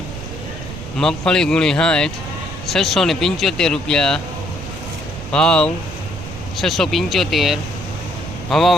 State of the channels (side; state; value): right; noise; rumble, 11 dB below the sound